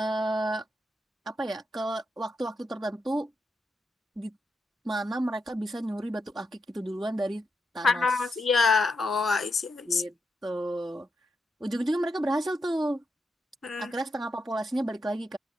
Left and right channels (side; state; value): both; normal; correlation 0.84